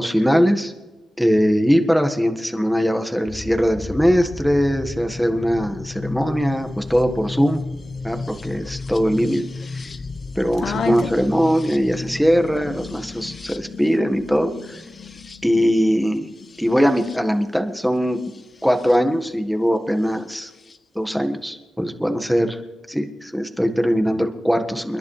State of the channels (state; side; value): normal; both; correlation 0.96